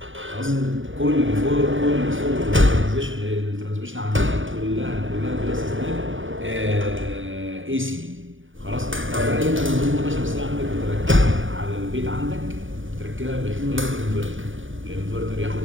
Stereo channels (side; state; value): left; late; 0.57 ms